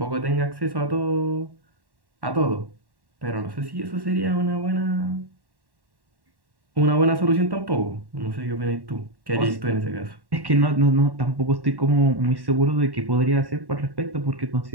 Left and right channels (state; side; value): late; left; 1.1 ms